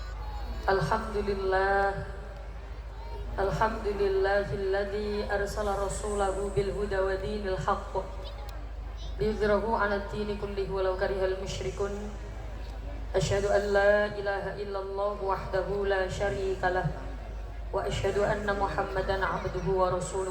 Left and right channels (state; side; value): identical; both; correlation 1.00